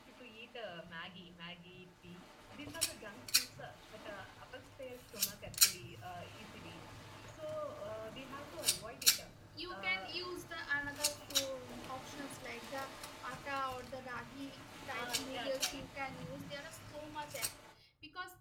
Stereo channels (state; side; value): identical; both; correlation 1.00